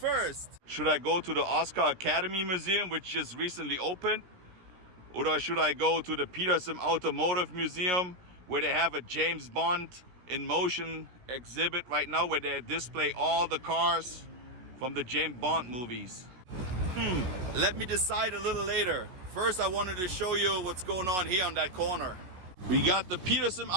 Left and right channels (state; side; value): late; left; 17 ms